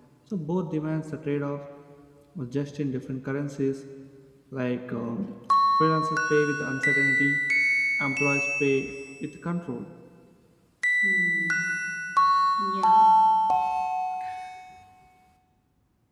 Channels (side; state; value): both; identical; correlation 1.00